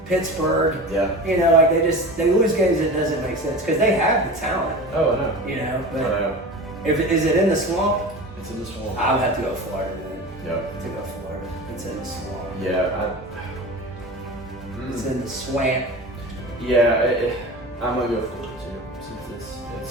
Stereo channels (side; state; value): both; normal; correlation 0.32